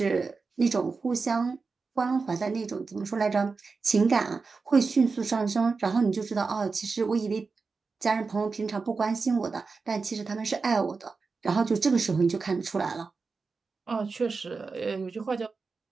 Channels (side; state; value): left; quieter; 4.5 dB